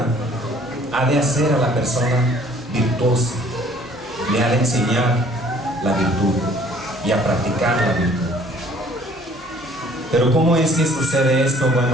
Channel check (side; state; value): both; normal; correlation 0.56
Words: ha de hacer a la persona virtuosa, le ha de enseñar la virtud y a practicar la virtud. Pero ¿cómo es que sucede esto?